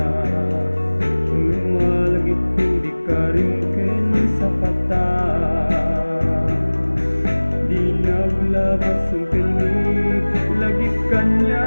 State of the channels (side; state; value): both; inverted; correlation -1.00